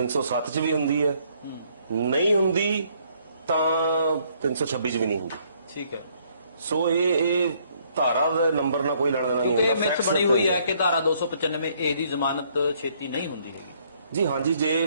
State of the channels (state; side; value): inverted; both; correlation -0.67